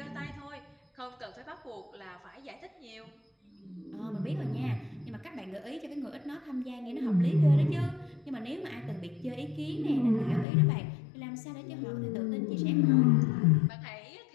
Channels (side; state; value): right; drops out; at 10.5 s